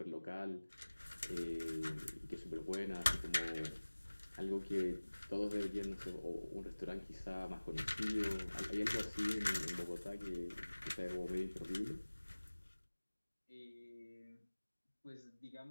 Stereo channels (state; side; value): inverted; both; correlation -1.00